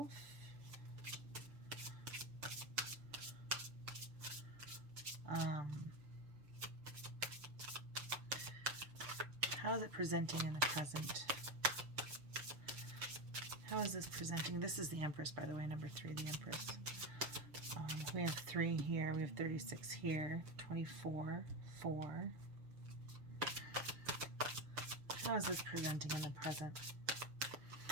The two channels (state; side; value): late; left; 6.8 ms